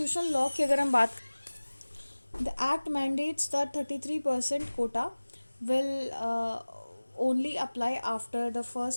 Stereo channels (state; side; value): inverted; both; correlation -1.00